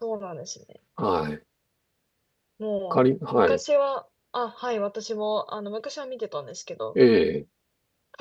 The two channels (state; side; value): identical; both; correlation 1.00